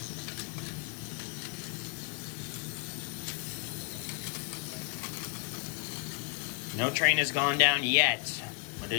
No train has gone down yet, but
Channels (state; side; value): quieter; right; 33.2 dB